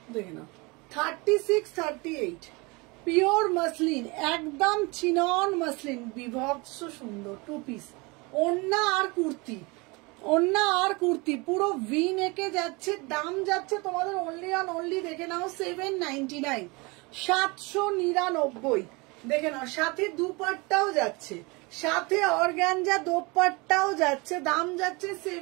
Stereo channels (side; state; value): left; quieter; 26.6 dB